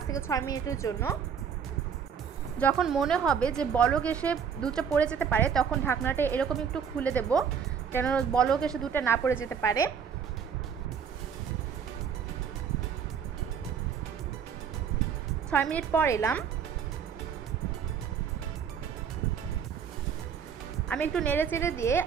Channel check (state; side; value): quieter; left; 7.1 dB